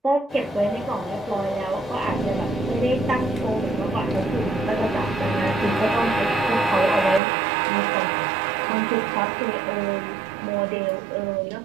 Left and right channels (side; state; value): left; drops out; at 7.2 s